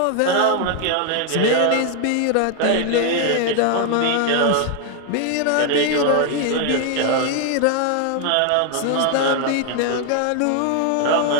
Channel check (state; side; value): different; both; correlation 0.00